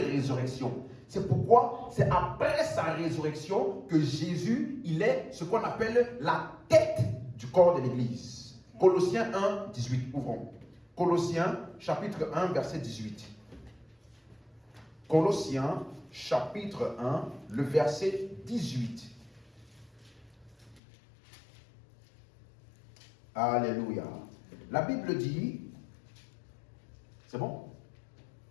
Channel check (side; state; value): right; drops out; at 20.8 s